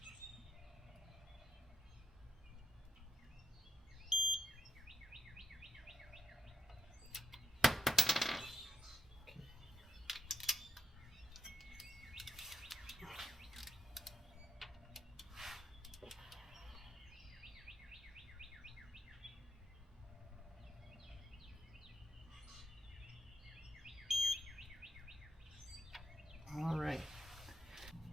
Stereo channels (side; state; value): both; normal; correlation 0.73